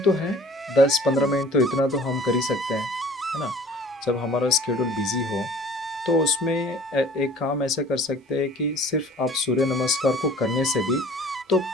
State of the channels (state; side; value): normal; both; correlation 0.49